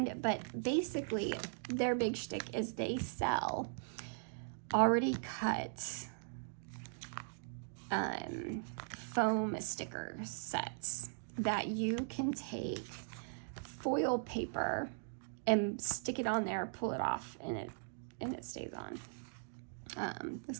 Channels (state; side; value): silent; left; digital silence